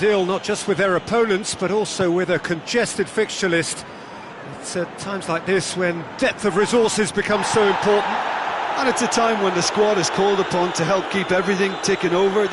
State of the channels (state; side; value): identical; both; correlation 1.00